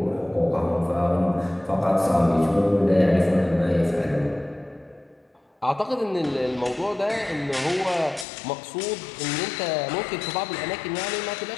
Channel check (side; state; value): right; drops out; at 8.2 s